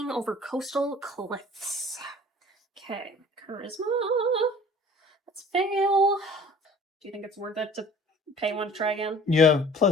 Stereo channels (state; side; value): normal; both; correlation 0.48